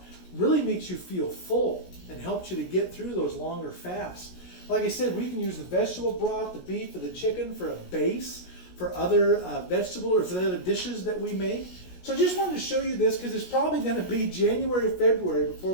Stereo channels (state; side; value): late; right; 16 ms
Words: really makes you feel full and helps you to get through those longer fasts. Like I said, we can use the vegetable broth, the beef, or the chicken for a base for other vegetable or for the other dishes that we make. So I just wanted to show you this because it's probably going to be January, February before